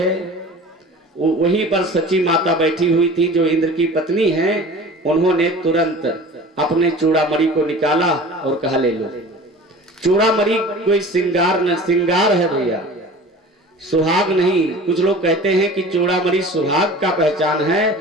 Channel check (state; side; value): normal; both; correlation 0.40